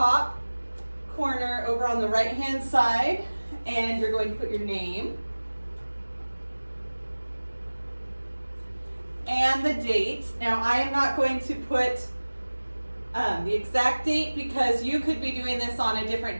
corner over on the right-hand side, and you're going to put your name and the date. Now, I am not going to put the exact date because you could be doing this on a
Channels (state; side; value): inverted; both; correlation -1.00